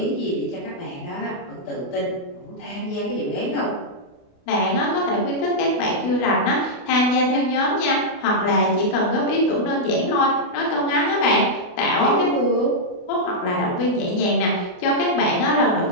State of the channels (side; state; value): right; late; 28 ms